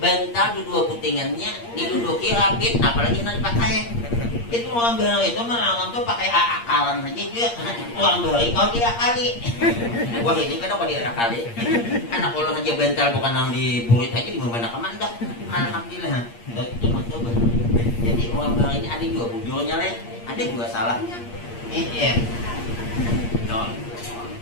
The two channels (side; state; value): right; late; 8.6 ms